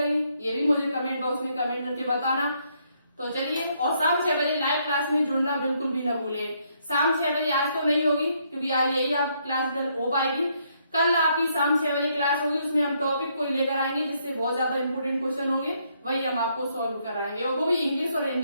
ये भी मुझे कमेंट बॉक्स में कमेंट करके बताना। तो चलिए, और शाम 6 बजे लाइव क्लास में जुड़ना बिल्कुल भी न भूले। शाम 6 बजे आज तो नहीं होगी क्योंकि आज यही आप क्लास हो पाएगी, कल आपकी शाम 6 बजे क्लास होगी, उसमें हम टॉपिक कोई लेकर आएंगे जिससे बहुत ज्यादा इंपोर्टेंट क्वेश्चन होंगे, वही हम आपको सॉल्व कराएंगे, और वो भी इंग्लिश और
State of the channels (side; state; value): both; inverted; correlation -0.72